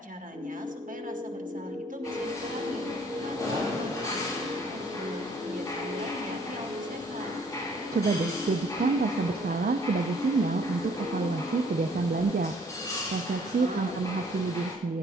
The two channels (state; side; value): normal; both; correlation 0.61